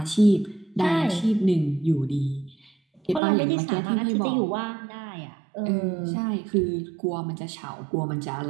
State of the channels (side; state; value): left; drops out; at 3.2 s